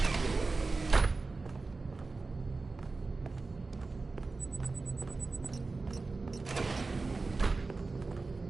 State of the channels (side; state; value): left; quieter; 3.8 dB